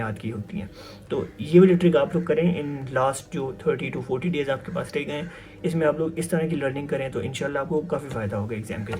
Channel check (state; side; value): identical; both; correlation 1.00